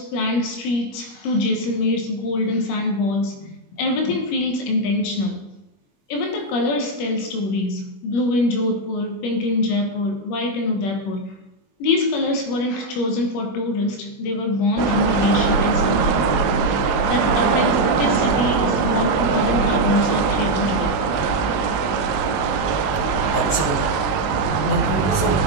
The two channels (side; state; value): right; late; 21 ms